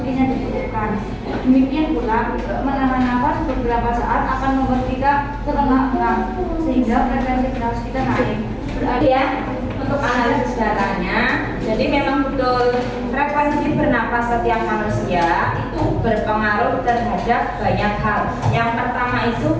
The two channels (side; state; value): both; identical; correlation 1.00